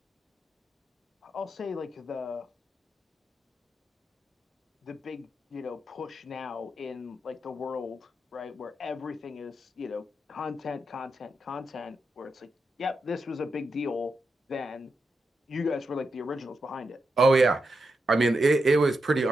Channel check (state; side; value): normal; both; correlation 0.86